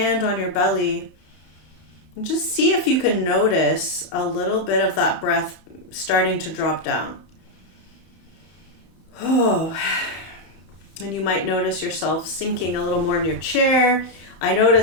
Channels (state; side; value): late; right; 32 ms